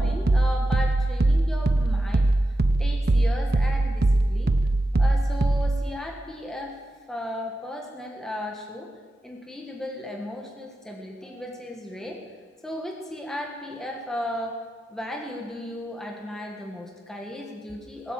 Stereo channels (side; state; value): both; normal; correlation 0.91